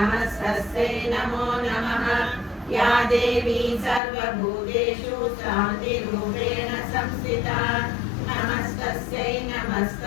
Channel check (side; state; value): right; drops out; at 4.0 s